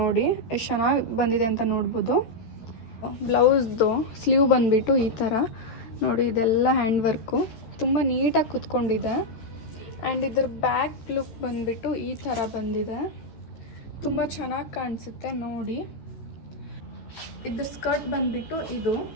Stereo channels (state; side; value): late; right; 13 ms